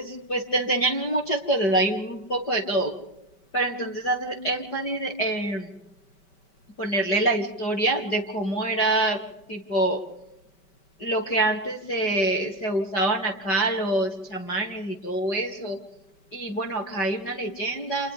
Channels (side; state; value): right; late; 5.2 ms